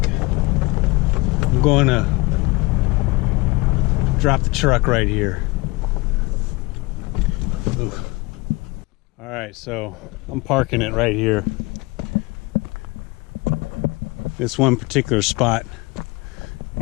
I'm going to drop the truck right here. Alright, so I'm parking it right here. This one particular spot,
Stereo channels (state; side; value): quieter; right; 24.2 dB